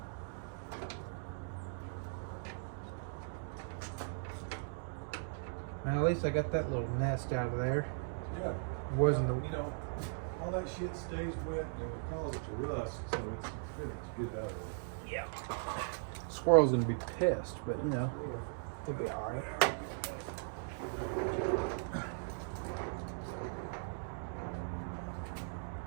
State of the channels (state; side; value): silent; left; digital silence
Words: Now at least I got that little nest out of there. Yeah. It wasn't the, you know, all that shit stays wet and it causes it to rust, so it's good out of it. yeah. Squirrel's gonna be pissed, but you know, he'll be all right.